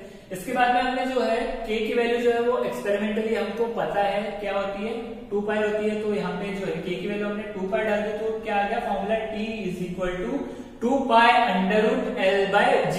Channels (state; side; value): identical; both; correlation 1.00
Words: इसके बाद में हमने जो है k की वैल्यू जो है वो एक्सपेरिमेंटली हमको पता है क्या होती है 2 पाई होती है, तो यहाँ पे जो है k की वैल्यू हमने 2 पाई डाल दी, तो क्या आ गया formula t is equal to 2 pi under root l by